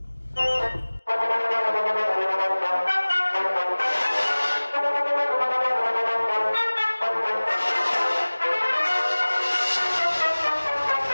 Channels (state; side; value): inverted; both; correlation -1.00